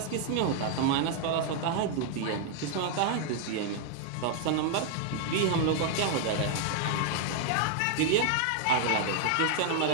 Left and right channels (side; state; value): both; different; correlation 0.00